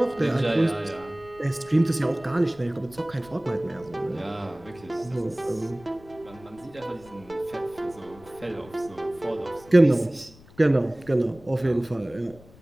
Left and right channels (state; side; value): noise; left; rumble, 23 dB below the sound